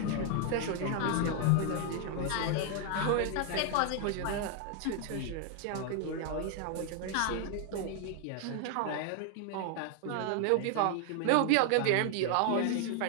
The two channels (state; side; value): different; both; correlation 0.00